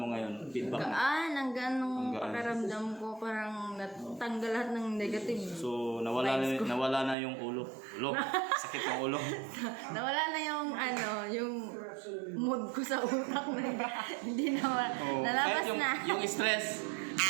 ngayon? Feedback mo? Ang gaan ng Ang gaan. pakiramdam ko. Parang natanggal lahat ng negative. So nawala na yung ulo. Sakit ng ulo. Nawala na yung mood ko sa utak na hindi na nalabas Kahit na. yung stress,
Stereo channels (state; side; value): drops out; left; at 7.2 s